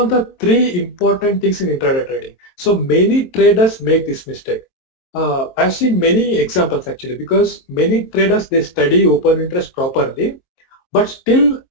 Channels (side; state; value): right; late; 22 ms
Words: the three important things in intraday trading. So many traders make this mistake. I've seen many examples actually, because many traders, they study open interest properly, but still